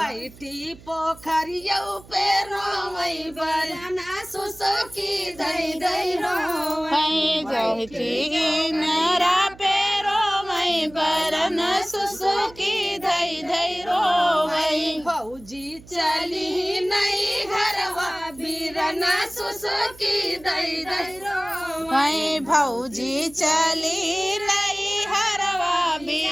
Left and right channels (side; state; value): right; noise; hum, 21 dB below the sound